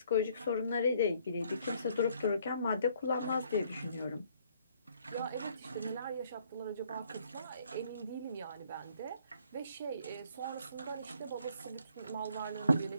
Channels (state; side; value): inverted; both; correlation -0.64